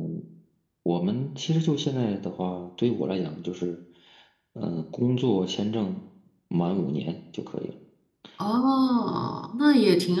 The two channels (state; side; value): identical; both; correlation 1.00